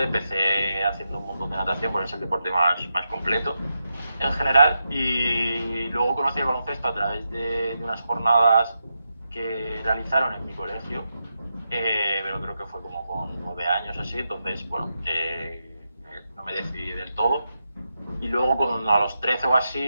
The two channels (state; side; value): inverted; both; correlation -0.86